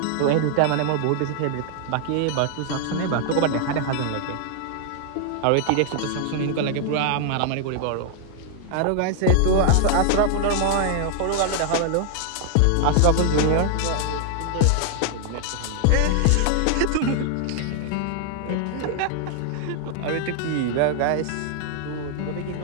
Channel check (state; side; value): different; both; correlation 0.00